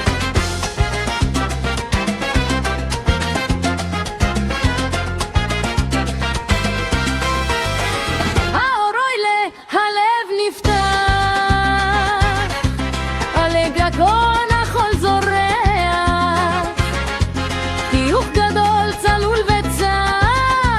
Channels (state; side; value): identical; both; correlation 1.00